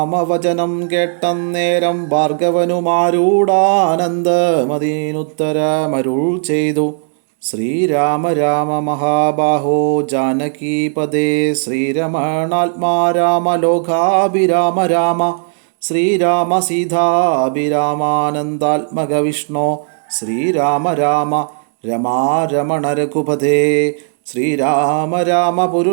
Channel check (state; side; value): silent; left; digital silence